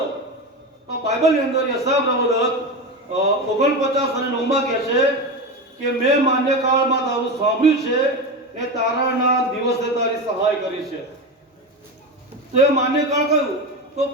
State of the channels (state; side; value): normal; both; correlation 0.20